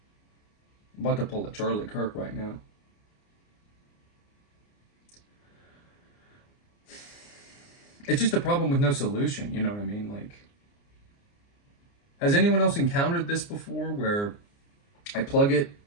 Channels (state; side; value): late; right; 29 ms